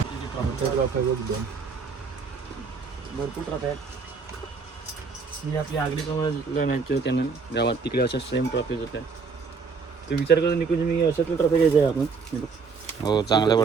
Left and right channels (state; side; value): quieter; left; 5.0 dB